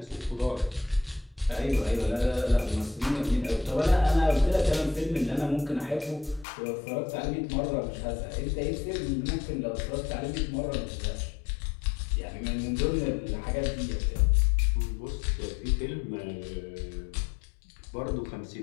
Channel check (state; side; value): drops out; right; at 6.5 s